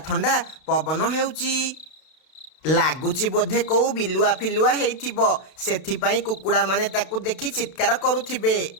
ଥଣ୍ଡା ପବନ ହେଉଛି। ଲାଗୁଛି ବୋଧେ କୋଉ ବିଲୁଆ ଫିଲୁଆ ହେଇଥିବ, ସେଥିପାଇଁ କୁକୁଡ଼ା ମାନେ ତାକୁ ଦେଖି ଚିତ୍କାର କରୁଥିବେ।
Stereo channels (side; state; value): right; late; 32 ms